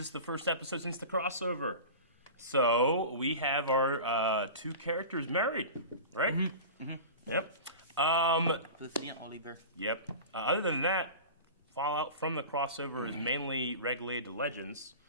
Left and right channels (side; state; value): both; inverted; correlation -0.33